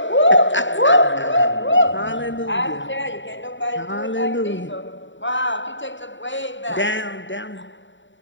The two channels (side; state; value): right; late; 0.55 ms